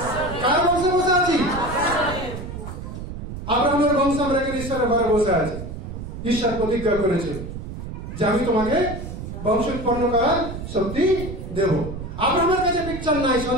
কার বংশে বসে আছি? আব্রাহামের বংশ আমরা এখানে ঈশ্বরের ঘরে বসে আছি। ঈশ্বর প্রতিজ্ঞা করেছে যে আমি তোমাকে বংশ উৎপন্ন করার শক্তি দেব। আব্রাহামের কাছে পিকচার নাই,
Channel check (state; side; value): noise; right; rumble, 8 dB below the sound